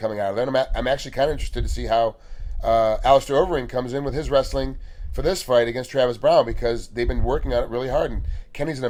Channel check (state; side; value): identical; both; correlation 1.00